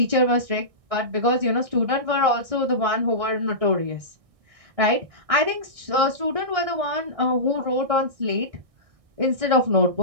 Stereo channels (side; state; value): left; late; 1.6 ms